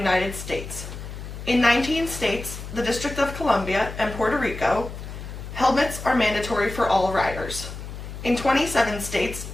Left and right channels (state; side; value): noise; left; hum, 10 dB below the sound